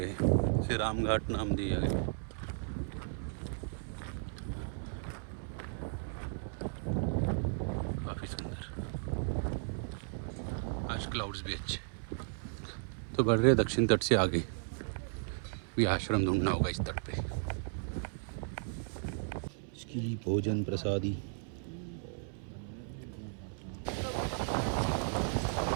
हैं, इसे राम घाट नाम दिया गया। काफ़ी सुंदर, आज क्लाउड्स भी अच्छे। तो बढ़ रहे दक्षिण तट से आगे, भी आश्रम ढूंढना होगा इस तट पे। इसकी भोजन प्रसादी।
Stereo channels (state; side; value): silent; left; 54 dB below the other